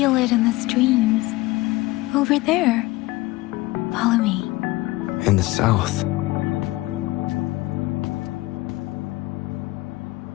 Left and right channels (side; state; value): right; quieter; 19.8 dB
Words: it in the streams. Over there. Follow me. In the south.